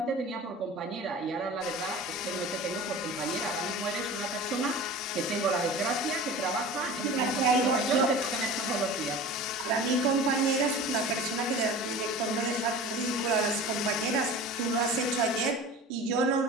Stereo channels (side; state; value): both; normal; correlation 0.37